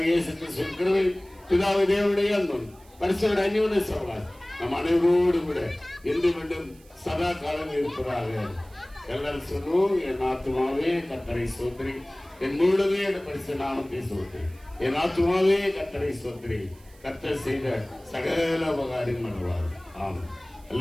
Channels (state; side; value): noise; right; hiss, 27 dB below the sound